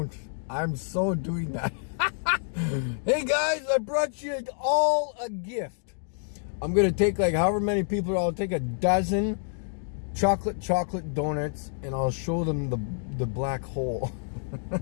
I'm so doing that. Hey, guys, I brought you all a gift. I'm going to take like however many people. I'll take a dozen chocolate donuts, and I'll show them the black hole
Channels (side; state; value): right; silent; digital silence